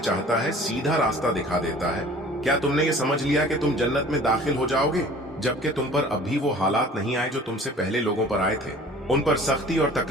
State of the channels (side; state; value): both; normal; correlation 0.47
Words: है सीधा रास्ता दिखा देता है। क्या तुमने ये समझ लिया कि तुम जन्नत में दाखिल हो जाओगे जबकि तुम पर अब भी वो हालात नहीं आए जो तुमसे पहले लोगों पर आए थे? उन पर सख्ती और